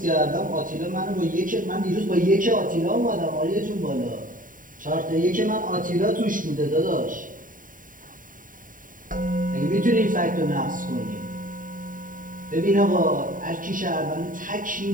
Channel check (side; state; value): left; late; 0.39 ms